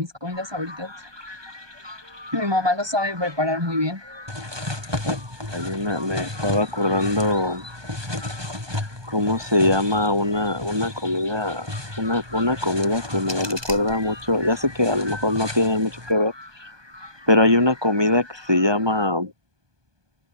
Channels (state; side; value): late; left; 1.2 ms